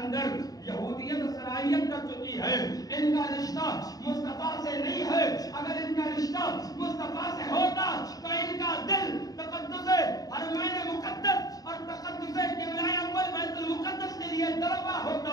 یہودیت صلاحیت کر چکی ہے. ان کا رشتہ مصطفیٰ سے نہیں ہے. اگر ان کا رشتہ مصطفیٰ سے ہوتا تو ان کا دل تقدس حرمین مقدس اور تقدس قبلہ اول بیت المقدس کے لیے تڑپا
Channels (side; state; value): right; late; 0.18 ms